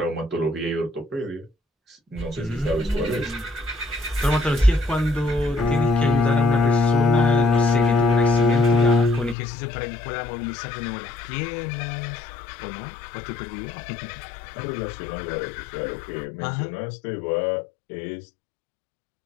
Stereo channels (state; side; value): drops out; right; at 9.3 s